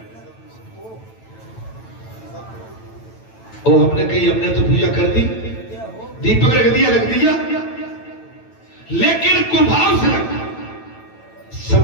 और हमने कही हमने तो पूजा कर दी, दीपक रख दिया, लेकिन कुभाव से रखा,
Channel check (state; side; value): late; right; 9.1 ms